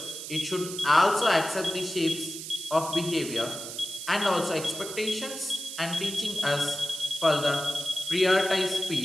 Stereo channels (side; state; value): right; noise; hiss, 9 dB below the sound